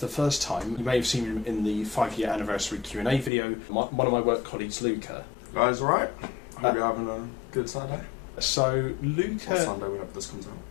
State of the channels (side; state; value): right; drops out; at 3.3 s